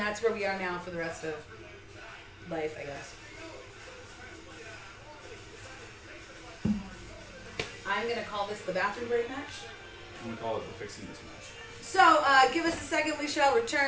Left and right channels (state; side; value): identical; both; correlation 1.00